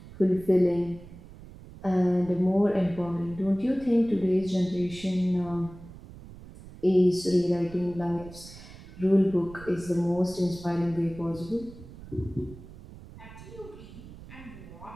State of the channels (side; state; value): right; noise; rumble, 17 dB below the sound